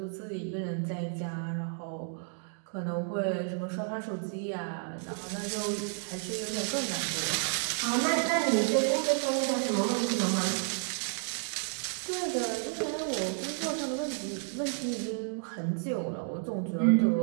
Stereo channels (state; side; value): silent; left; 55 dB below the other